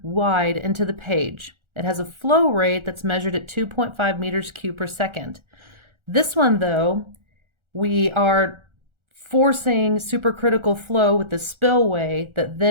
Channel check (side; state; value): left; late; 1.4 ms